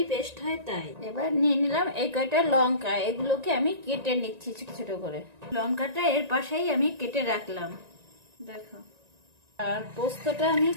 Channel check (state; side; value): late; left; 1.9 ms